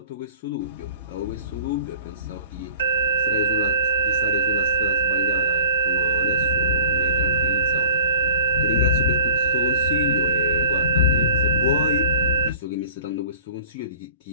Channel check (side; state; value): both; inverted; correlation -0.44